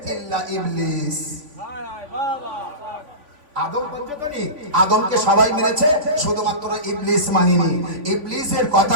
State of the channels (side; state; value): left; late; 3.6 ms